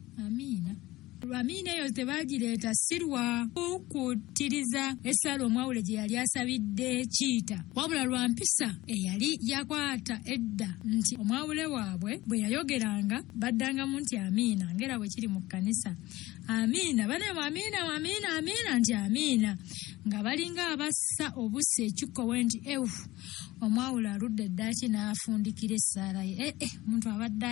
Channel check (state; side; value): quieter; right; 18.2 dB